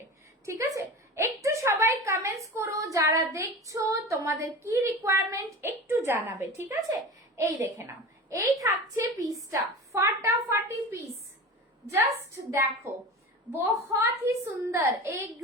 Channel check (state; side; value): normal; both; correlation 0.32